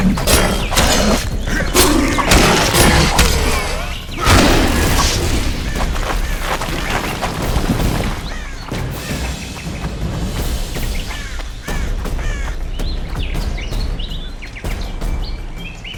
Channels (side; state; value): both; identical; correlation 1.00